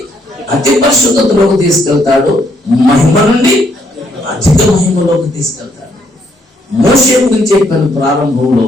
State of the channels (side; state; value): both; normal; correlation 0.71